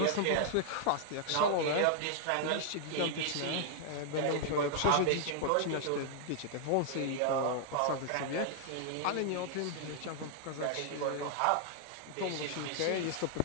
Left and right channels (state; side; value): different; both; correlation -0.01